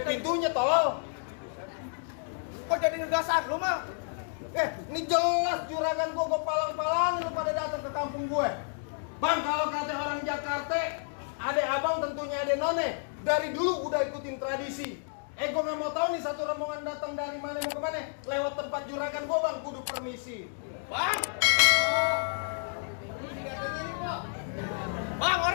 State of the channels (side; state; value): right; silent; digital silence